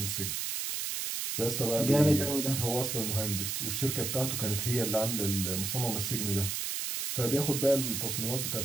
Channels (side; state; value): right; noise; hiss, 2 dB below the sound